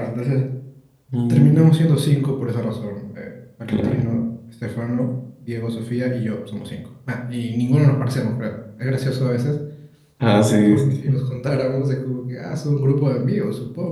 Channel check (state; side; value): identical; both; correlation 1.00